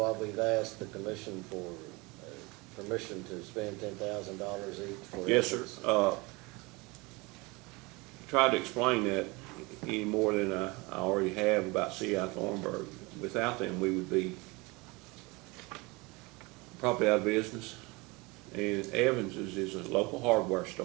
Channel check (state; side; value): quieter; left; 25.4 dB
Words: we've asked the commission for permission to spend $10,000 each for? Yes, sir. Tried to explain that any more than I already have about C.I. Thornburg. Without them, we would be probably out of business. And Evans's is a local hardware